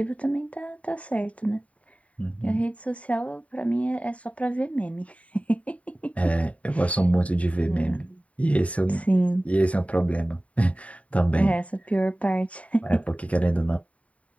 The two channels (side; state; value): right; late; 0.066 ms